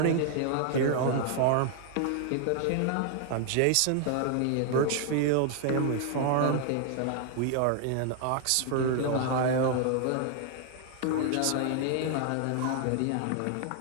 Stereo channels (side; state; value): both; different; correlation 0.00